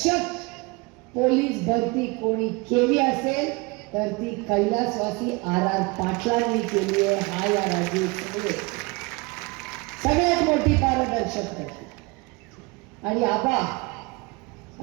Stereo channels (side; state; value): left; quieter; 26.7 dB